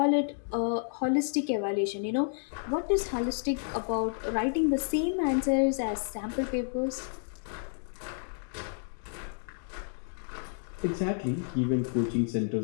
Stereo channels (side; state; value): right; silent; digital silence